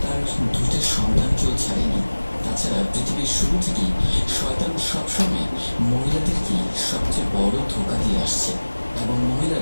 তার দুইটা সন্তানকেও ছাড়েনি। তাছাড়া পৃথিবীর শুরু থেকেই শয়তান সবসময় মহিলাদেরকে সবচেয়ে বড় ধোঁকা দিয়ে আসছে, এবং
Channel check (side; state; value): both; inverted; correlation -1.00